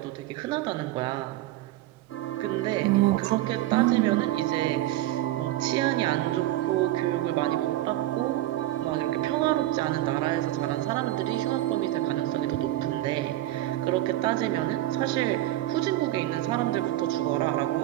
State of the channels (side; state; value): left; quieter; 15.2 dB